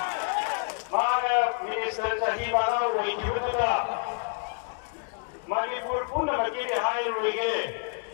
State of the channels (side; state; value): right; quieter; 37.2 dB